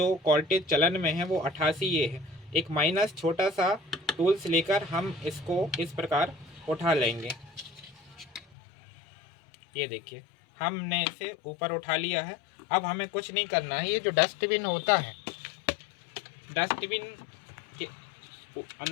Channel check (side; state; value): right; drops out; at 8.5 s